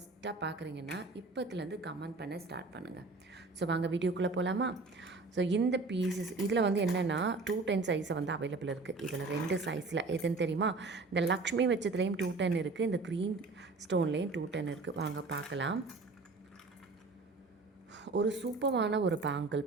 பார்க்குறீங்கன்னா இப்போத்துலேருந்து கமெண்ட் பண்ண ஸ்டார்ட் பண்ணுங்கள். ஸோ வாங்க வீடியோக்குள்ளே போகலாமா? ஸோ இந்த பீசஸ் இதில் வந்து என்னென்னா 210 சைஸை வந்து அவைலபிள் இருக்குது. இதில் 2 சைஸில் எதுன்னு தெரியுமா? இந்த லக்ஷ்மி வச்சதுலேயும் 210 இருக்குது, இந்த க்ரீன் ஸ்டோன்லேயும் 210 இருக்குது. வாங்க பார்க்கலாம். ஒரு சூப்பரான ஒரு பேங்கிள்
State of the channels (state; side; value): quieter; left; 3.8 dB